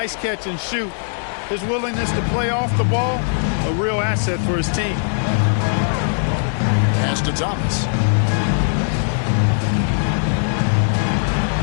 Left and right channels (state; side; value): silent; right; digital silence